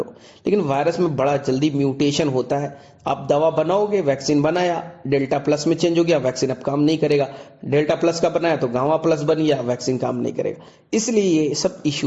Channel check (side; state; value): both; identical; correlation 1.00